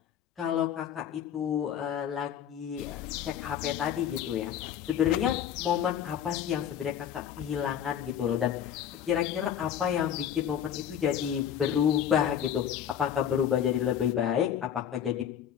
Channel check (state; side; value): quieter; right; 9.3 dB